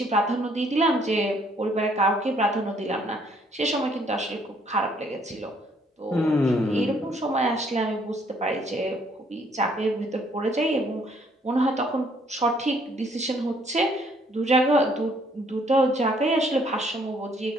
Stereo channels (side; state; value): both; normal; correlation 0.65